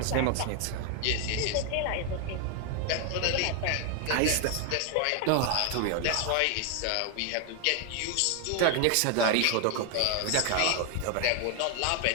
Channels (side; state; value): both; different; correlation 0.01